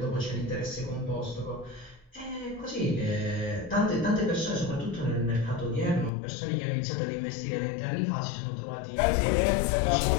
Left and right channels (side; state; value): right; drops out; at 6.1 s